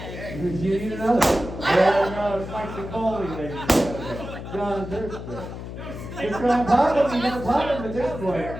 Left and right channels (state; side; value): noise; left; hum, 9 dB below the sound